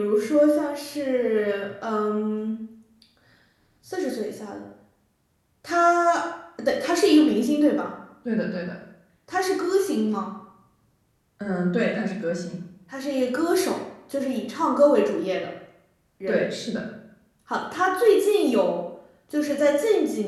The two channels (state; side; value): identical; both; correlation 1.00